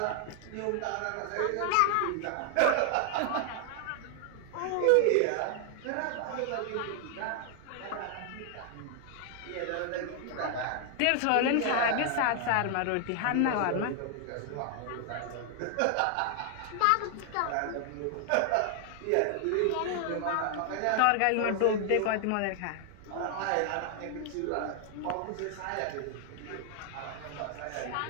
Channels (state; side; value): different; both; correlation 0.00